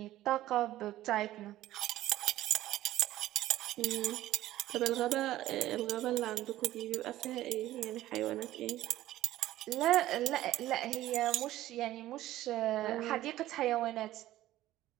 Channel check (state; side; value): quieter; left; 14.7 dB